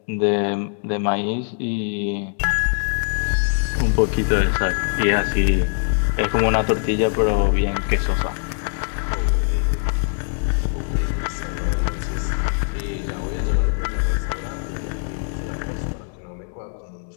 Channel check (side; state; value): right; silent; digital silence